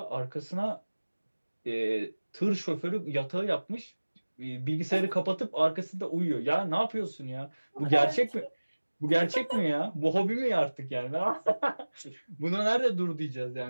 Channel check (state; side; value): inverted; both; correlation -1.00